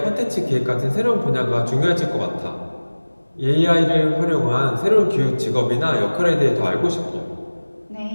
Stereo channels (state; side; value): inverted; both; correlation -1.00